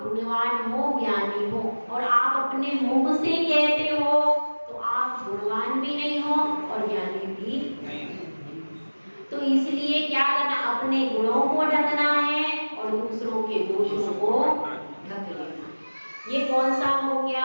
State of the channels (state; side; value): inverted; both; correlation -1.00